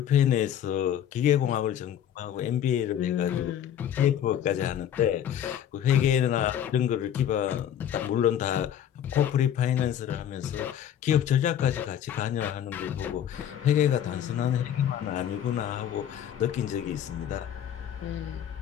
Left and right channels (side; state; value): right; quieter; 10.0 dB